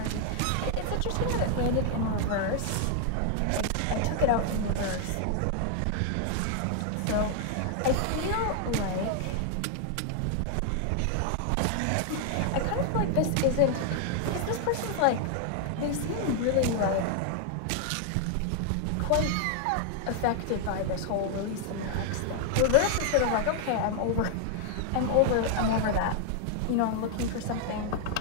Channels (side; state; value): both; different; correlation 0.00